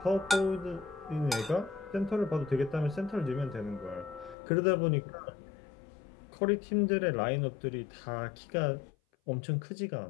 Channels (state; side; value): drops out; right; at 4.4 s